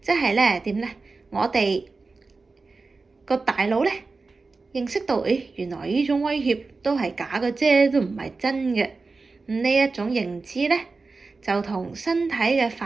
即係咧點咧？我哋個大腦咧認識到，原來呢種威脅都係假嘅啫，都唔係真嘅。呢一種認知咧，就同身體嘅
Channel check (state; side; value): quieter; left; 4.0 dB